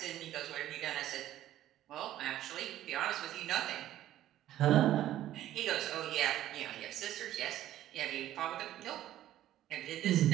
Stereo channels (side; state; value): left; quieter; 13.1 dB